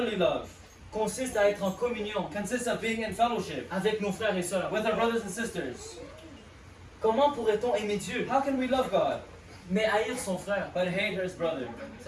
love consiste à être en communion consists of being in fellowship avec nos frères et sœurs. with our brothers and sisters. Comment pourrait-on aimer Dieu, How can we love God mais haïr son frère? but hate his brother?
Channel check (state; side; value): identical; both; correlation 1.00